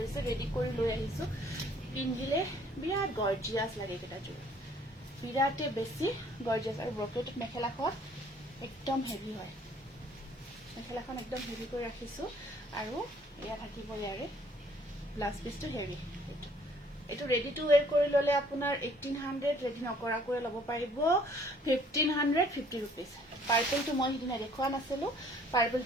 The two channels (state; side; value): normal; both; correlation 0.59